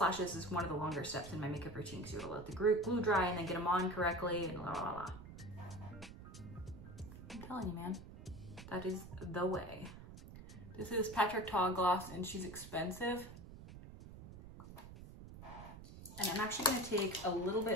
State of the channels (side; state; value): right; noise; rumble, 14 dB below the sound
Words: is one of the longer steps in my makeup routine because you gotta let the glue dry and then get them on correctly and la la la. I'm telling you, man, that is the way. This is Patrick Ta gloss and she's expensive. And I'm actually gonna take a little